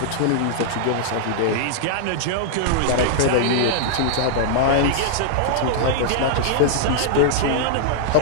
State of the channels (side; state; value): both; different; correlation -0.01